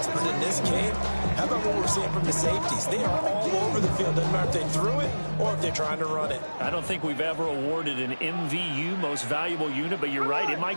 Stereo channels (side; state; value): both; inverted; correlation -1.00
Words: But in this game, how about what we're seeing from the safeties? They are all over the field. Doesn't matter if they threw it or if they're trying to run it. I don't think we've ever awarded an MVU, most valuable unit, but you're right, it